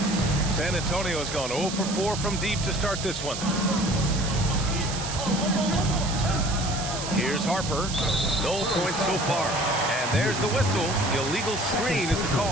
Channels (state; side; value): noise; right; hiss, 7 dB below the sound